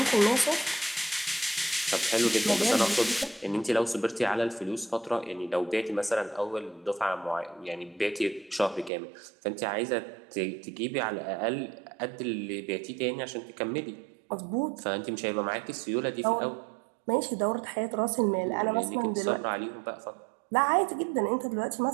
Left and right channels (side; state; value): left; drops out; at 8.9 s